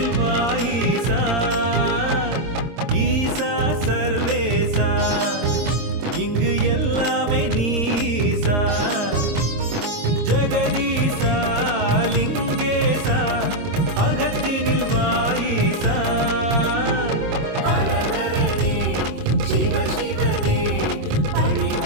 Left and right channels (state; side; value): late; left; 23 ms